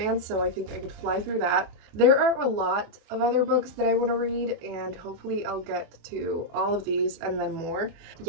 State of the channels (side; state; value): left; late; 24 ms